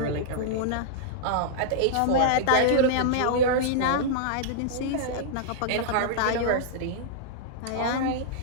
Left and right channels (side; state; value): both; different; correlation -0.02